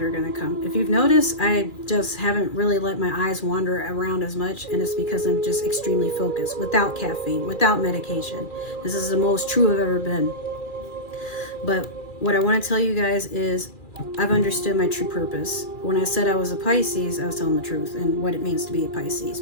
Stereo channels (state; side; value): late; right; 2.4 ms